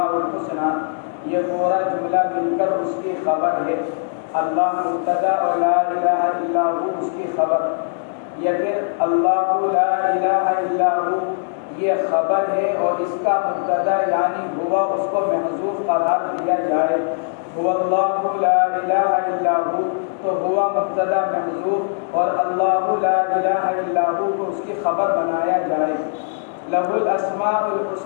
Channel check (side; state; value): right; silent; digital silence